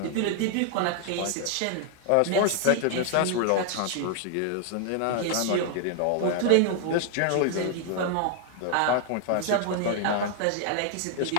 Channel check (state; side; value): different; both; correlation 0.00